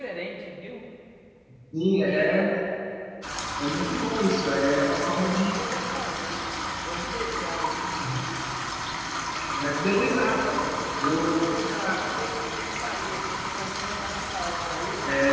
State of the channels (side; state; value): both; identical; correlation 1.00